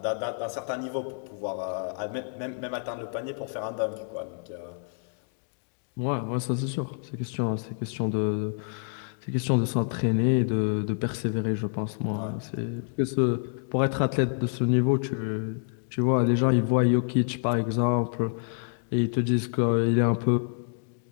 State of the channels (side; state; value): right; silent; digital silence